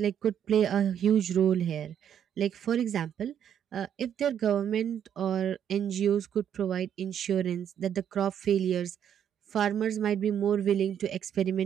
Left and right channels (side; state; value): left; quieter; 9.1 dB